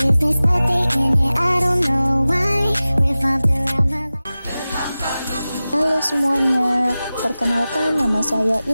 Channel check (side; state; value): both; inverted; correlation -0.96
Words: but they in it, I don't know why. Revolved around my life. Halo semuanya, perkenalkan nama saya